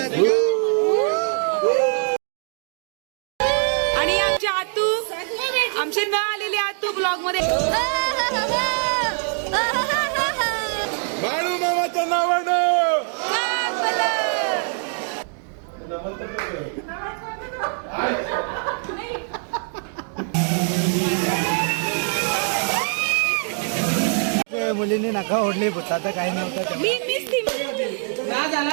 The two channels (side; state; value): left; silent; 56 dB below the other